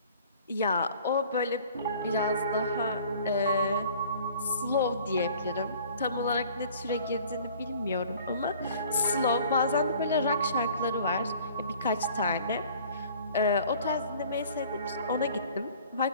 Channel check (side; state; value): both; inverted; correlation -0.50